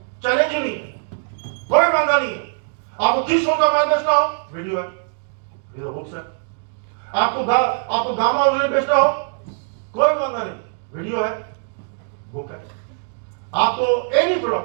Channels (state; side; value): silent; left; digital silence